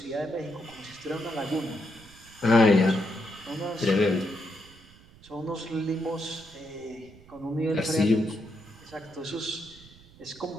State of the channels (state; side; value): noise; right; rumble, 23 dB below the sound